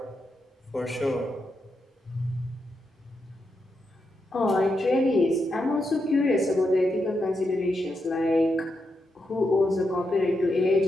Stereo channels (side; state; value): both; normal; correlation 0.85